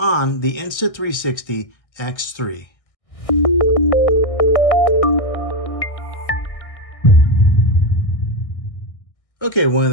the Insta360 X3. Okay, one of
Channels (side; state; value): right; late; 1.6 ms